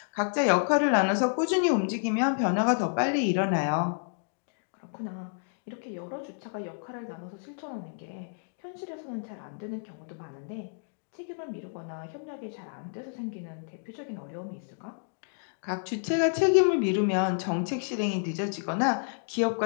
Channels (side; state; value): right; silent; digital silence